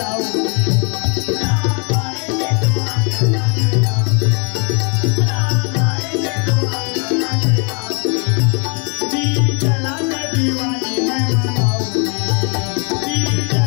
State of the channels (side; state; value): right; quieter; 36.4 dB